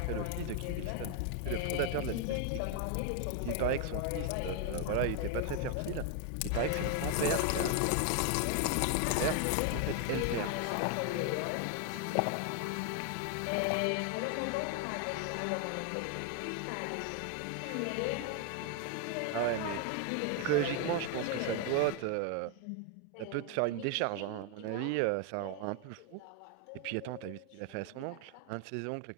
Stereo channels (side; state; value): both; different; correlation 0.00